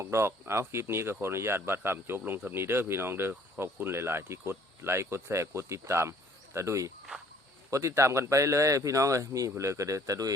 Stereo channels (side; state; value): both; normal; correlation 0.57